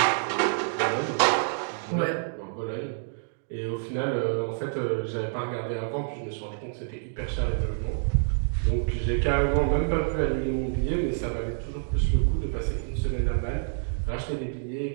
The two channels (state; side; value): silent; left; digital silence